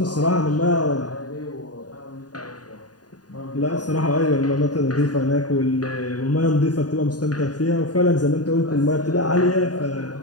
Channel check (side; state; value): right; late; 0.69 ms